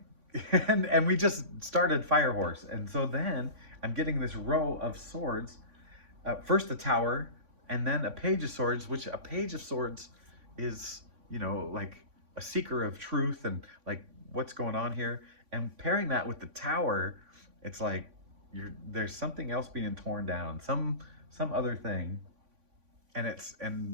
and we just started Fire Horse. And so then I'm getting this row of swords, first the Tower, and then a Page of Swords, which a Page of Swords is, you know, like a seeker of truth and like what's going on here. And pairing that with the Tower, it's like there's something else being torn down, some other thing. And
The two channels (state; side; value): late; left; 3.5 ms